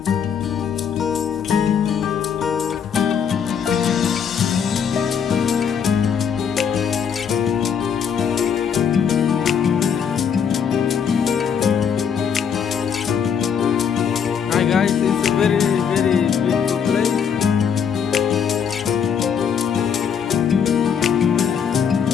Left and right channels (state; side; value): quieter; right; 7.3 dB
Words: Guys, it's a very beautiful place.